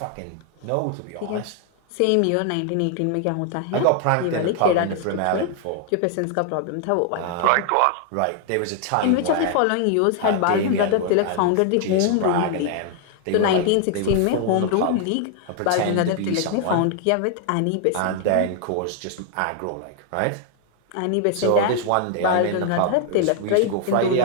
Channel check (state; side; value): different; both; correlation 0.00